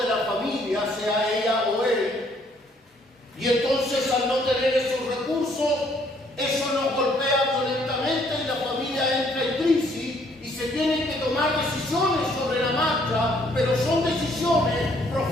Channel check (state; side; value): normal; both; correlation 0.65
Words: de la familia, sea ella o él, y entonces al no tener esos recursos, eso nos golpea violentamente y la familia entra en crisis y se tienen que tomar decisiones sobre la marcha, pero son decisiones